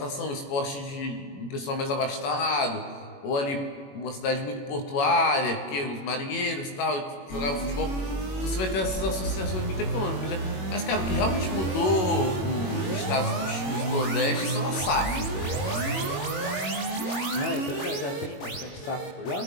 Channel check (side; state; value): right; late; 21 ms